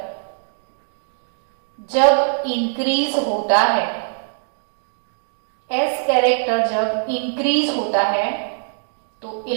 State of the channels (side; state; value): left; silent; digital silence